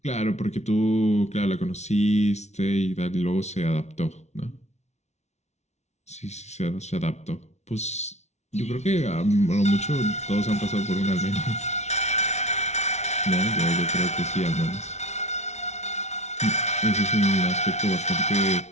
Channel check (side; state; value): right; late; 0.32 ms